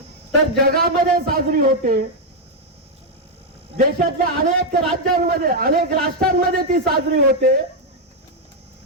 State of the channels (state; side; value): normal; both; correlation 0.00